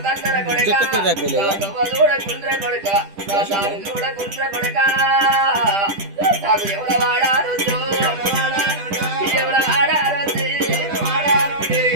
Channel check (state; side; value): late; left; 10 ms